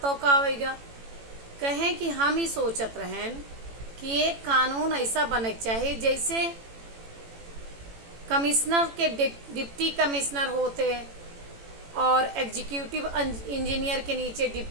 का आवेगा। कहें कि हम ही सोचत रहें कि एक कानून ऐसा बने चाहिए जैसे कमिश्नर के डिप्टी कमिश्नर होते और एग्जीक्यूटिव इंजीनियर के नीचे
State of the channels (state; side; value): late; left; 18 ms